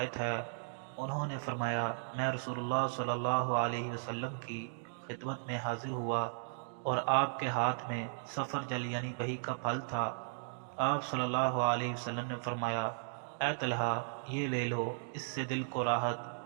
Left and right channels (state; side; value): silent; left; digital silence